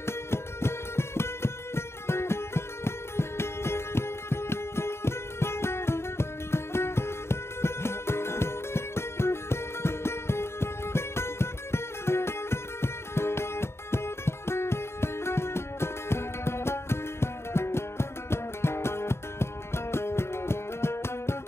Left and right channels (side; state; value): right; late; 0.12 ms